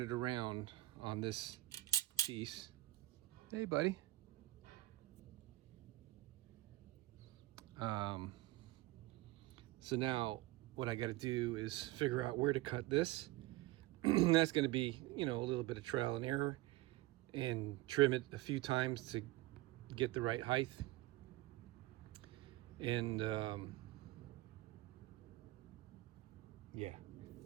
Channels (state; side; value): quieter; left; 18.5 dB